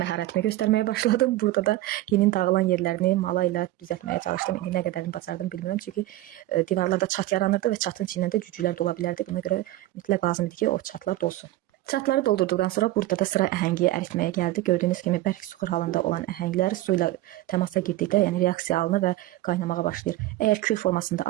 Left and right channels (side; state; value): left; quieter; 16.3 dB